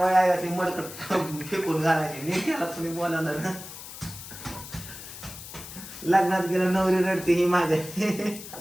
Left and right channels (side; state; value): left; noise; hiss, 13 dB below the sound